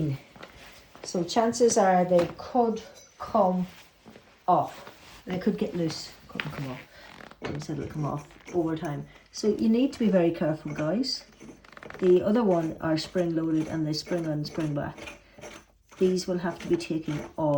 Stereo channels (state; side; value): identical; both; correlation 1.00